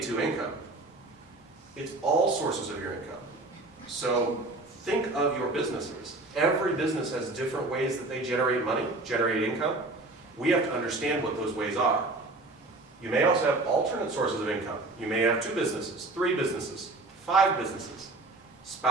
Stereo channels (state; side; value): quieter; left; 3.0 dB